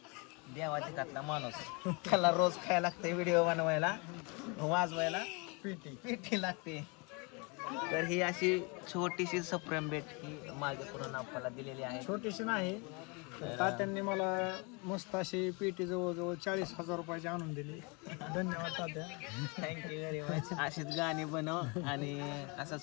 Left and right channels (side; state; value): right; quieter; 30.7 dB